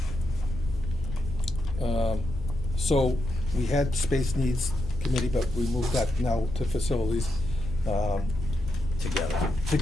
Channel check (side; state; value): both; normal; correlation 0.83